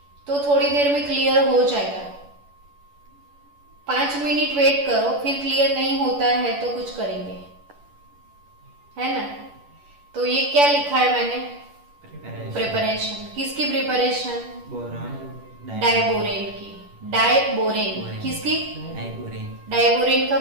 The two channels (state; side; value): late; left; 11 ms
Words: तो थोड़ी देर में क्लियर हो जाएगा। 5 मिनट वेट करो, फिर क्लियर नहीं होता है तो कुछ करेंगे, है ना। तो ये क्या लिखा है मैंने? प्रिपरेशन। किसकी प्रिपरेशन? डाइबोरेन की। डाइबोरेन किसकी? डाइबोरेन का